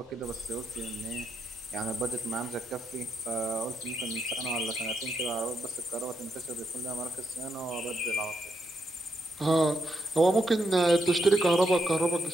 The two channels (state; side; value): normal; both; correlation 0.80